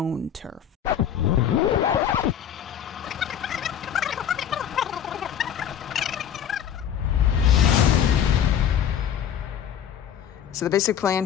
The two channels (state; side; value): quieter; right; 9.2 dB